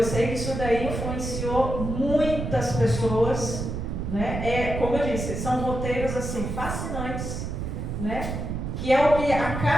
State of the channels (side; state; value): right; noise; rumble, 4 dB below the sound